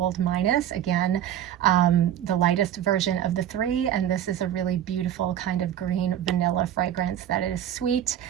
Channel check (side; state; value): left; quieter; 10.7 dB